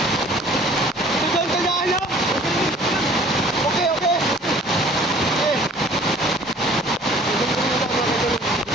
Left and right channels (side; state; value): both; normal; correlation 0.53